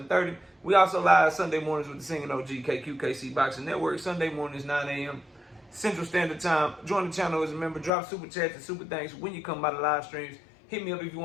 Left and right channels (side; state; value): right; drops out; at 7.9 s